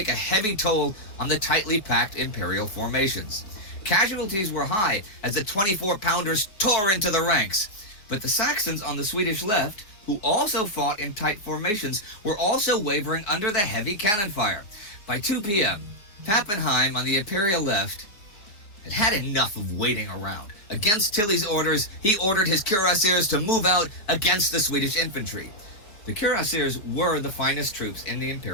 a heavy toll on the tightly packed imperial formations. Casualties were high as the 24-pounders tore into the ranks. But the Saxons on the Swedish left, who also fought in tight formations, were also wavering under the heavy cannon fire. By 2 p.m., Pappenheim on the imperial left had enough of waiting around. Against Tilly's orders, he ordered his cuirassiers to move out against the Swedish infantry. The cuirassiers were the finest troops in the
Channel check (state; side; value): late; right; 4.7 ms